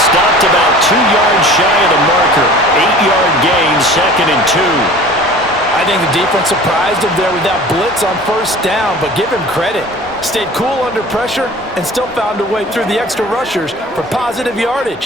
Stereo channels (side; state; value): both; normal; correlation 0.43